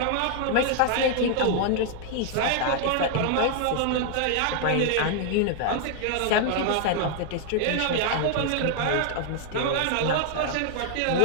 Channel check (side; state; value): both; different; correlation 0.00